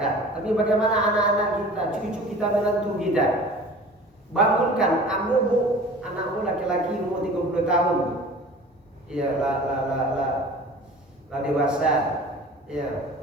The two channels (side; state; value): both; normal; correlation 0.42